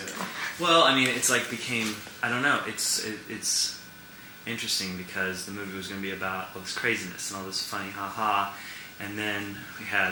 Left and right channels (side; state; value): both; identical; correlation 1.00